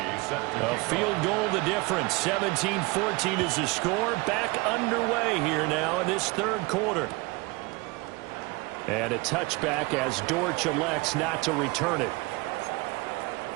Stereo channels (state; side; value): quieter; left; 24.5 dB